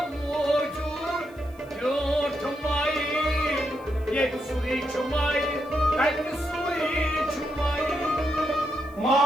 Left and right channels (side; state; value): left; noise; hiss, 28 dB below the sound